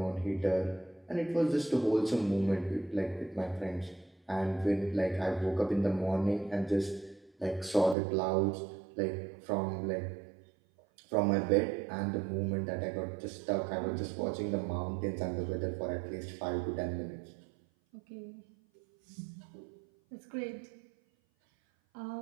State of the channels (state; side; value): drops out; left; at 8.0 s